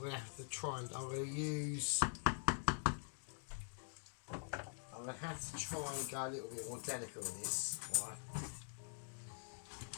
to have to try and I'm going to use going to have to try and go a little bit more delicate with this, right?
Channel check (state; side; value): silent; right; digital silence